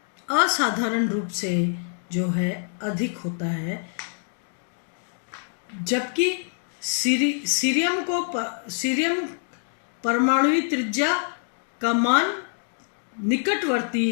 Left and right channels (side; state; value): right; silent; digital silence